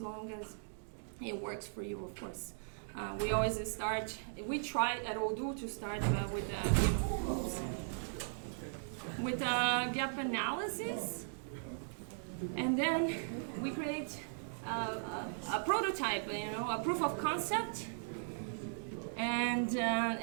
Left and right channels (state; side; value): silent; left; digital silence